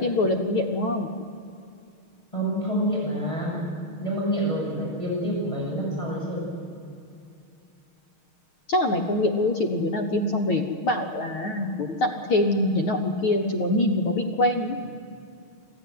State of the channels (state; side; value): late; right; 6.4 ms